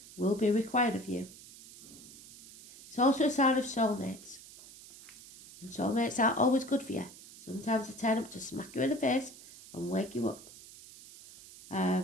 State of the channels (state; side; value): noise; right; hiss, 18 dB below the sound